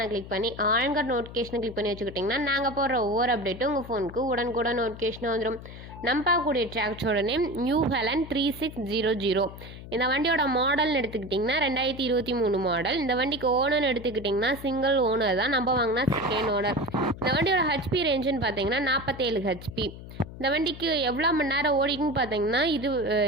கிளிக் பண்ணி ஆன்கர் நோட்டிஃபிகேஷனை கிளிக் பண்ணி வச்சுக்கிட்டிங்கன்னா நாங்கள் போடுற ஒவ்வொரு அப்டேட்டும் உங்கள் ஃபோனுக்கு உடனுக்குடன் நோட்டிஃபிகேஷன் வந்துடும். நம்ம பார்க்கக்கூடிய டிராக்டரோட நேம் நியூ ஹெலன் 3600. இந்த வண்டியோட மாடல்னு எடுத்துக்கிட்டிங்கன்னா 2023 மாடல். இந்த வண்டிக்கு ஓனர்னு எடுத்துக்கிட்டிங்கன்னா சிங்கிள் ஓனர் தான். நம்ம வாங்கினா செகண்ட் ஓனர். இந்த வண்டியோட ஹெச்பி ரேஞ்சுன்னு பார்த்தீங்கன்னா 47 ஹெச்பி. இந்த வண்டிக்கு எவ்வளோ மணி நேரம் ஓடிக்குன்னு பார்த்தீங்கன்னா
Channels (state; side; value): noise; left; hum, 14 dB below the sound